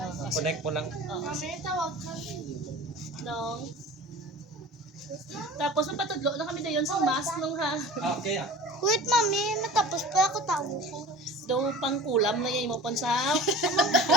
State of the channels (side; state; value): both; normal; correlation 0.39